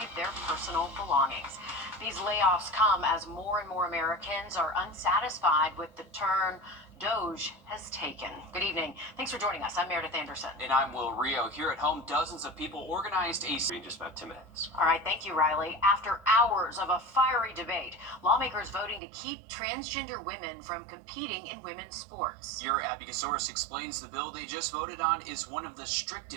their personal belongings. These layoffs come as more and more Americans are unsatisfied with the turn DOGE has taken. Good evening. Thanks for joining us. I'm Meredith Anderson. And I'm Will Rio. Here at home, dozens of people organized a... In just about 10 minutes. All right, thank you, Riley. After hours of a fiery debate, lawmakers voting to keep transgender women from competing in women's sports. Your Abby Gasoris explains the bill they just voted on is one of the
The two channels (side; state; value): left; drops out; at 19.0 s